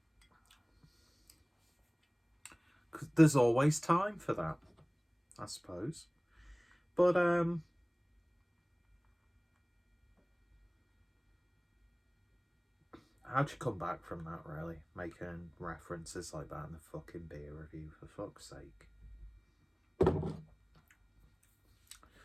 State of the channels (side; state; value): both; identical; correlation 1.00